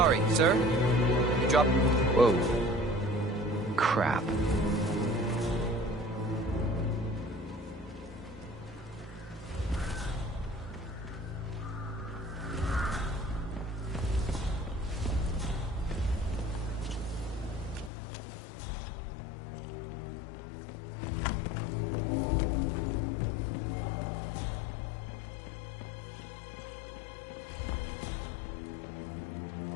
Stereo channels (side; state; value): right; drops out; at 17.9 s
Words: sir. You dropped... Whoa. Crap.